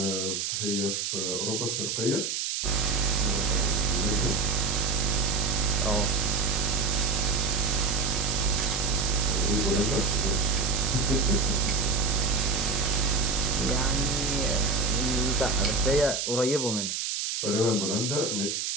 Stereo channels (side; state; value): right; noise; hiss, 2 dB below the sound